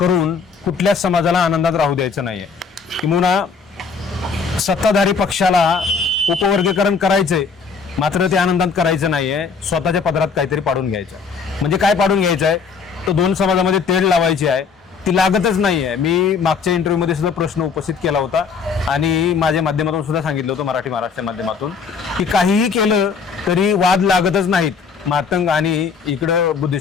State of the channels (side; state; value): right; quieter; 5.4 dB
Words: कुठल्याच समाजाला आनंदात राहू द्यायचं नाही आहे. किंवा सत्ताधारी पक्षाला उपवर्गीकरण करायचंय मात्र ते आनंदात करायचं नाहीये, स्वतःच्या पदरात काहीतरी पाडून घ्यायचं. म्हणजे काय पाडून घ्यायचं आहे, तर 2 समाजामध्ये तेढ लावायची आहे, ती लागतच नाहीये. मी मागच्या इंटरव्ह्यूमध्ये सुद्धा प्रश्न उपस्थित केला होता आणि माझ्या माध्यमातून सुद्धा सांगितलं होतं, मराठी महाराष्ट्र माध्यमातून, की काहीही केलं तरी वाद लागतच नाहीत मातंग आणि इकडं